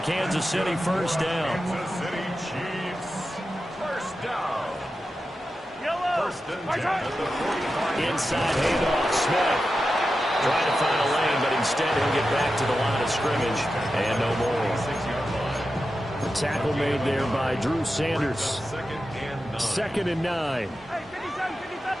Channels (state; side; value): normal; both; correlation 0.91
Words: Kansas City first down. Kansas City Chiefs first down. First and 10 at the 45. Inside handoff, Smith. Trying to find a lane, but instead he'll get back to the line of scrimmage and no more. 6-yard line. The tackle made there by Drew Sanders. Second and 9.